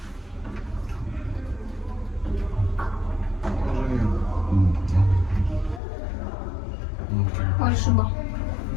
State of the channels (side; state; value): right; drops out; at 5.8 s